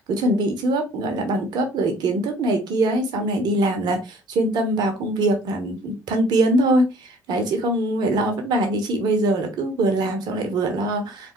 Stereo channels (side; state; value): both; normal; correlation 0.53